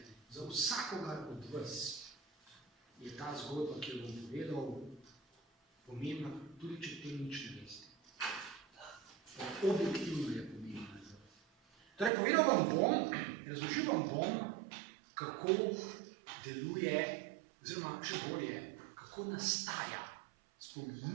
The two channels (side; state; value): left; drops out; at 12.1 s